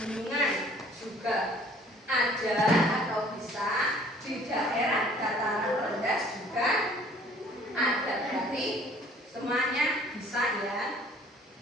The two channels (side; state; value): both; normal; correlation 0.55